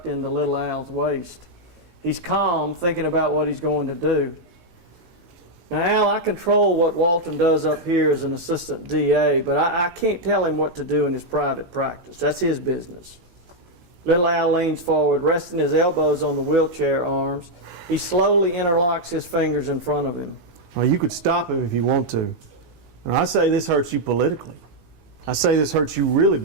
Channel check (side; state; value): left; late; 18 ms